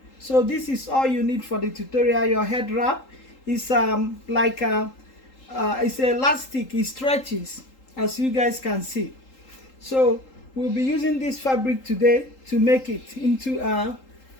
So this is all you need for the tutorial. Your head wrap is it's elastic, it stretches, as you guys can see. So we'll be using this fabric today to make it into a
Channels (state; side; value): late; right; 3.8 ms